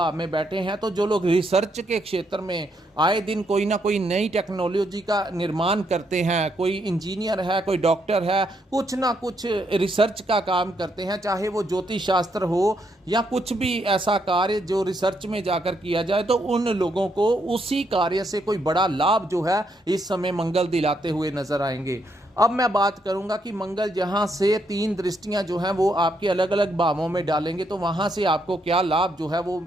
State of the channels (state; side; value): normal; both; correlation 0.76